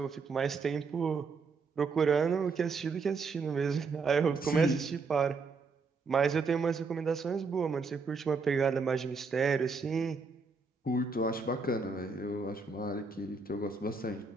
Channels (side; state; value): left; quieter; 4.5 dB